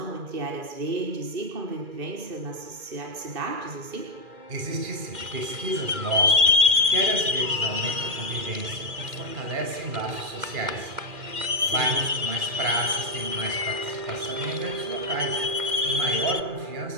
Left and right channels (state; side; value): late; left; 2.4 ms